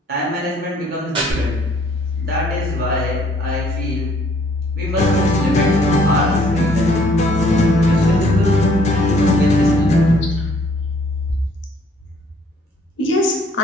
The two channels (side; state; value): both; normal; correlation 0.61